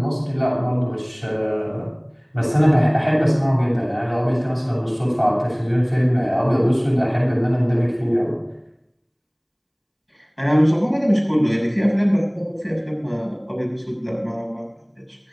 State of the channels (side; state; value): both; identical; correlation 1.00